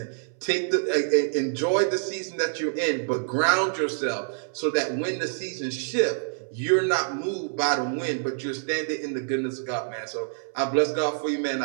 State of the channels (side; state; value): left; silent; 61 dB below the other